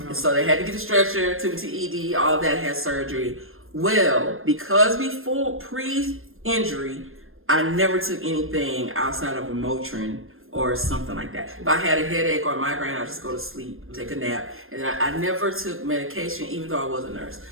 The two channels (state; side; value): late; left; 0.60 ms